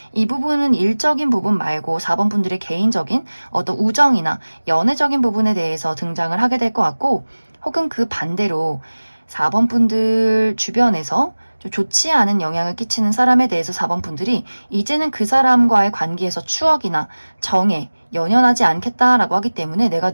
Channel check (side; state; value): both; inverted; correlation -1.00